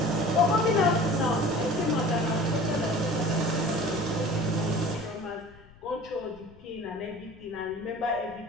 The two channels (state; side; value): noise; left; rumble, 24 dB below the sound